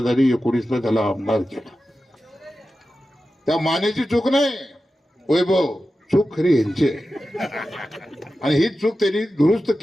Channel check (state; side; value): normal; both; correlation 0.93